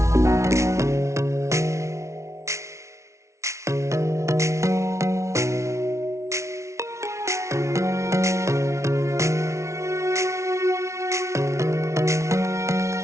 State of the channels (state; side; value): late; left; 0.14 ms